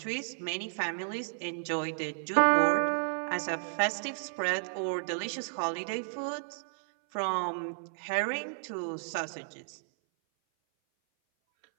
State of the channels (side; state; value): left; silent; 56 dB below the other